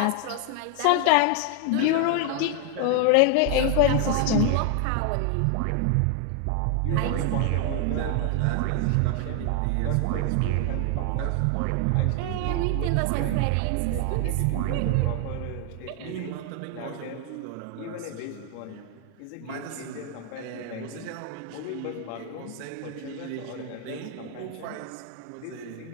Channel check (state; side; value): different; both; correlation 0.00